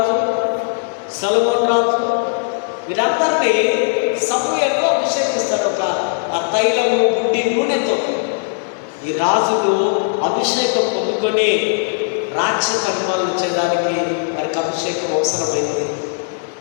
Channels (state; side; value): silent; right; digital silence